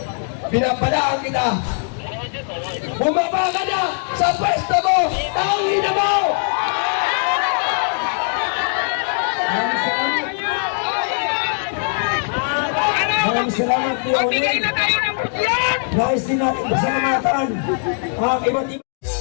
pinapalaan kita. Bumaba ka na sa pwesto mo, tangin na mo! Maraming salamat po, Onin. Nais din natin pasalamatan ang iba't ibang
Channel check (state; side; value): silent; right; 63 dB below the other